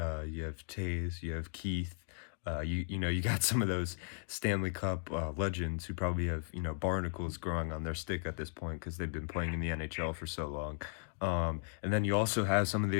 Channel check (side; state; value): right; silent; digital silence